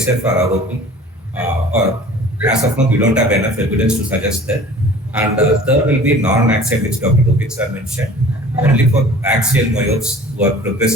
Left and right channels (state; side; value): normal; both; correlation 0.46